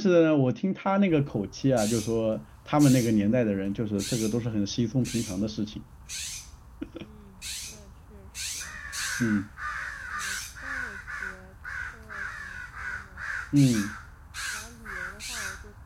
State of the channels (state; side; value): identical; both; correlation 1.00